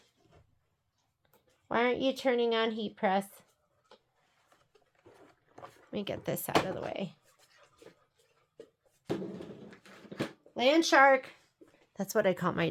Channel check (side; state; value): both; identical; correlation 1.00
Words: Why aren't you turning on heat press? Let me get this out of the way. Land shark. That's what I call my